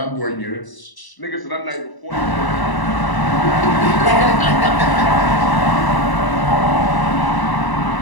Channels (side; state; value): right; late; 1.0 ms